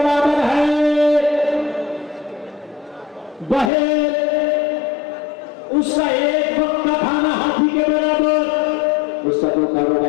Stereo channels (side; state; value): right; drops out; at 3.7 s